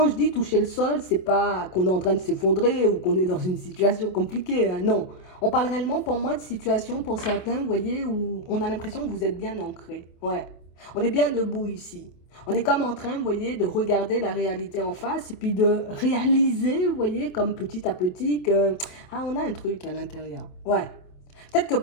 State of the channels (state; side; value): late; right; 27 ms